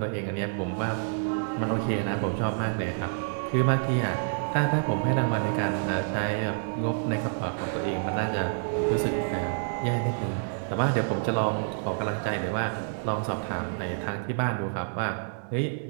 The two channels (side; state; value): left; silent; digital silence